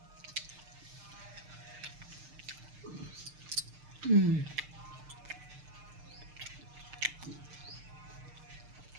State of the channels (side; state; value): left; late; 6.6 ms